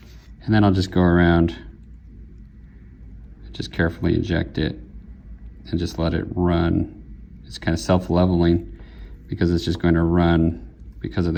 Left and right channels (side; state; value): both; identical; correlation 1.00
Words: and then I'll just go around, just carefully inject it, and just let it run. It's kind of self-leveling because it's just going to run because of